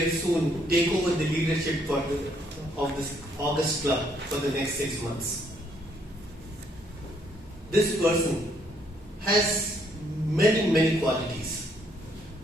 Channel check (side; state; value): both; normal; correlation 0.69